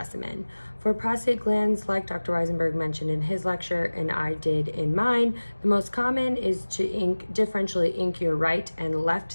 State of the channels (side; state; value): both; inverted; correlation -1.00